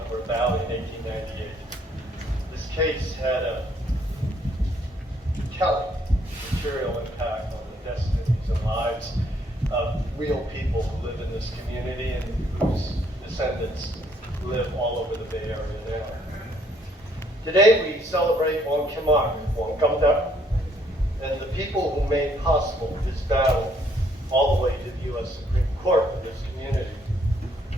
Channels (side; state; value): both; normal; correlation 0.67